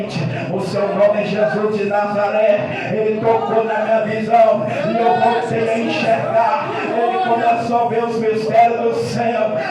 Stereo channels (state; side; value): identical; both; correlation 1.00